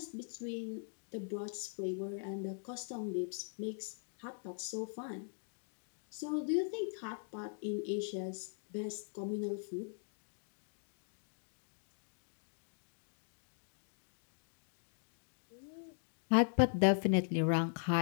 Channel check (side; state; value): right; silent; digital silence